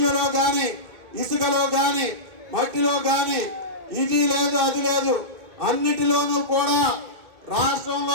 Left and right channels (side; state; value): left; late; 2.6 ms